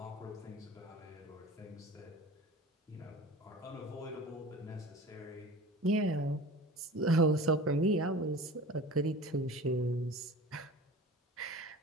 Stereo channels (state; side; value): normal; both; correlation 0.38